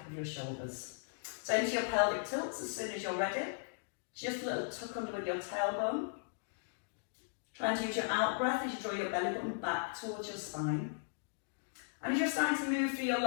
of your shoulders. So into your pelvic tilts as soon as you're ready. Just a little tuck under with your tailbone. Trying to use your out breath as you draw your belly button back towards your spine. And as you're starting to move through your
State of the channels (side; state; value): right; silent; digital silence